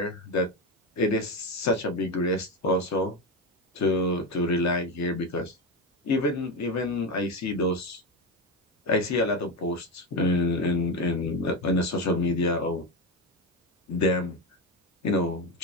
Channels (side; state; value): both; normal; correlation 0.15